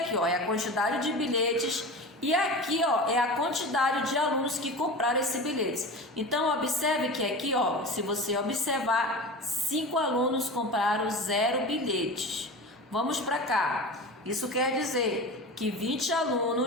é a quantidade de bilhetes, e aqui, é a quantidade de alunos que compraram esse bilhete. Então, observe que aqui, se você observar, 5 alunos compraram 0 bilhetes. Vamos para cá. Isso quer dizer que 20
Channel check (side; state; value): both; normal; correlation 0.30